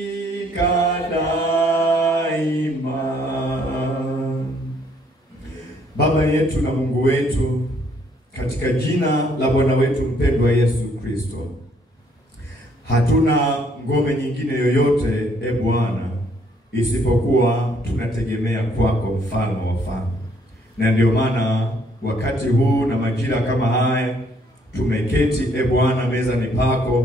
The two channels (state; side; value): normal; both; correlation 0.66